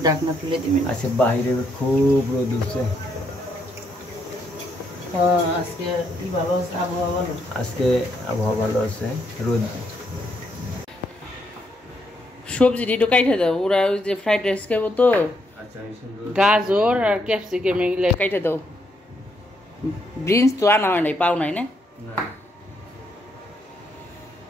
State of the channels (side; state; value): both; normal; correlation 0.76